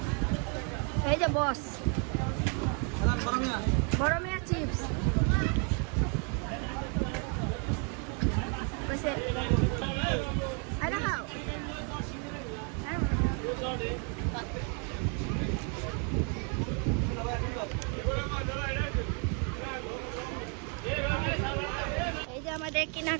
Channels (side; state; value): left; quieter; 38.2 dB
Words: এই যে বস, বড় মিয়া চিপস কইছে আরে খাও। এই যে আমাদের